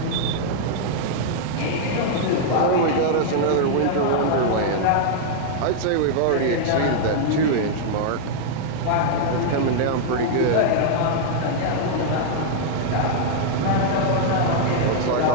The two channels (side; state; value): both; different; correlation -0.01